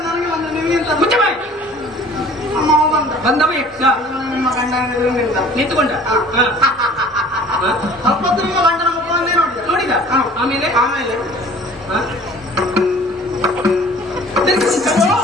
ನನಗೆ ಒಂದು ನಿಮಗಿಂತ ಮುಚ್ಚ ಬಾಯಿ. ಅಮ್ಮ ಬಂದ. ಬಂದವ ಯಕ್ಷ ನಿಮ್ಮ ಗಂಡ ನಿಂತುಕೊಂಡ. ಸ್ವಲ್ಪ ನಿಮ್ಮ ಗಂಡನ ಮುಖವನ್ನೇ ನೋಡಿದ. ನೋಡಿದ? ಆಮೇಲೆ ಆಮೇಲೆ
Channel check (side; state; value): both; normal; correlation 0.49